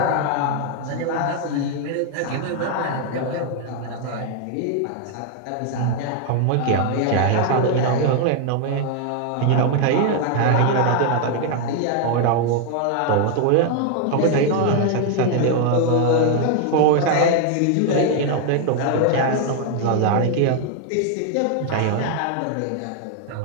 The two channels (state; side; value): different; both; correlation 0.00